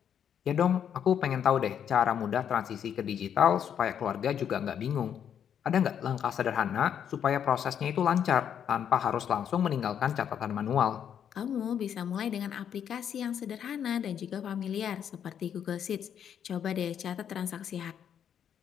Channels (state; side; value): quieter; right; 8.7 dB